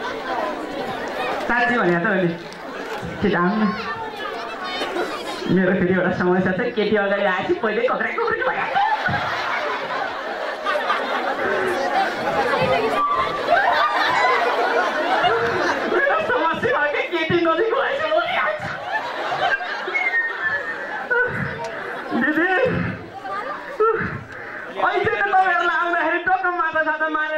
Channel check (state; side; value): identical; both; correlation 1.00